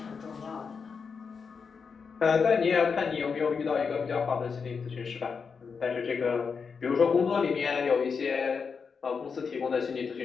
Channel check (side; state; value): right; quieter; 5.6 dB